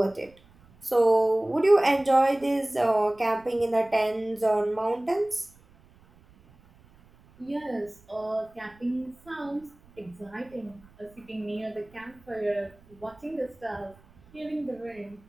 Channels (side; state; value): right; noise; rumble, 28 dB below the sound